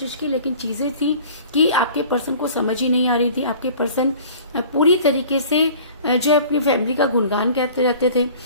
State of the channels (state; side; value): inverted; both; correlation -0.46